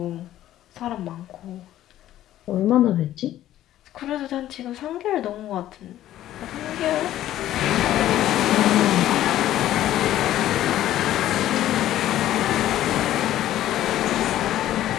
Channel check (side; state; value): right; quieter; 13.1 dB